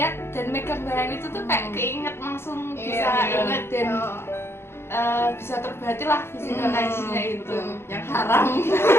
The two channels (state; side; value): late; right; 0.12 ms